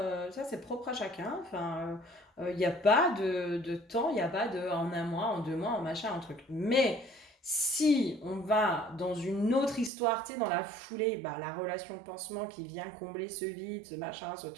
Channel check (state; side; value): drops out; left; at 9.9 s